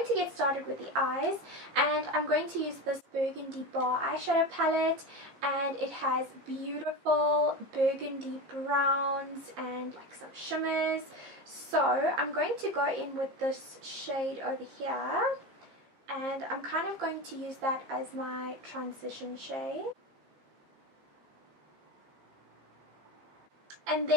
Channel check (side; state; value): left; late; 15 ms